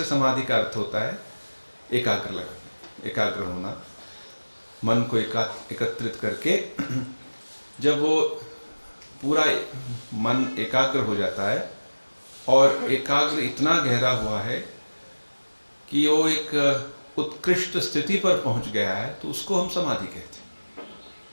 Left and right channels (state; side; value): inverted; both; correlation -1.00